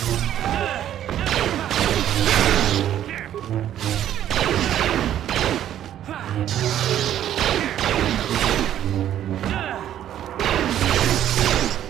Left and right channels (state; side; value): quieter; left; 11.2 dB